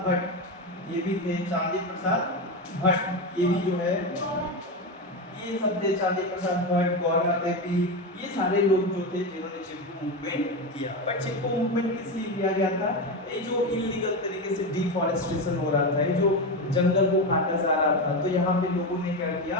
भट्ट, ये भी थे चांदी प्रसाद भट्ट, ये भी जो है ये सब थे, चांदी प्रसाद भट्ट, गौरा देवी, ये सारे लोग जो थे जिन्होंने चिपको मूवमेंट किया। बट चिपको मूवमेंट किस लिए किया गया था? ये जो इलीगल तरीके से डिफॉरेस्टेशन हो रहा था, ये जो जंगल को काटा जा रहा था, तो यहाँ पे लोगों ने क्या किया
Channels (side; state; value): both; normal; correlation 0.16